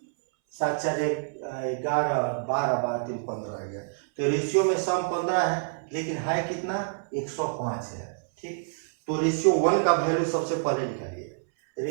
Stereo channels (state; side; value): silent; left; 60 dB below the other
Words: 7 4 11 12 12 3 15 आ गया। तो रेशियो में सम 15 है लेकिन है कितना 105 है। ठीक, तो रेशियो 1 का वैल्यू सबसे पहले निकालिए।